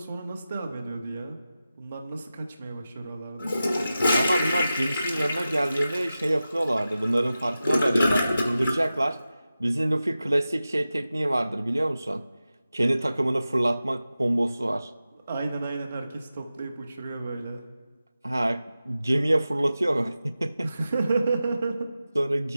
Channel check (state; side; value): inverted; both; correlation -0.94